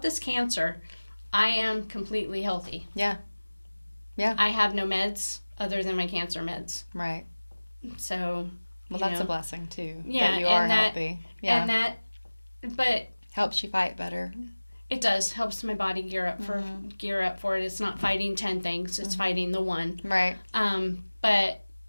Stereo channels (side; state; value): both; inverted; correlation -1.00